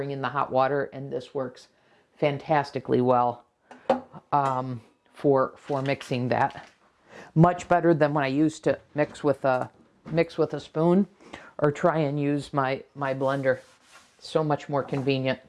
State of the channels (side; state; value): both; identical; correlation 1.00